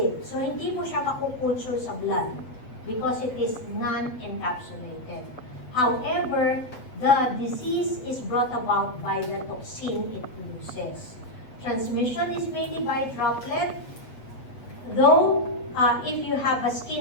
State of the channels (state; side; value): late; right; 8.1 ms